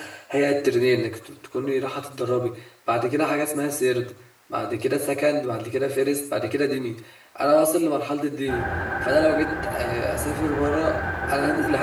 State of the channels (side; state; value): both; identical; correlation 1.00